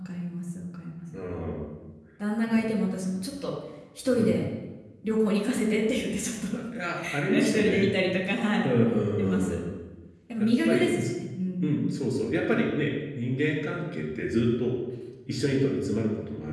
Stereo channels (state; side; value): identical; both; correlation 1.00